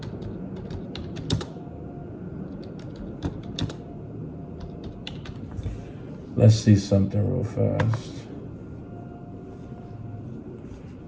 Let's see something real fast.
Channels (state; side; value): identical; both; correlation 1.00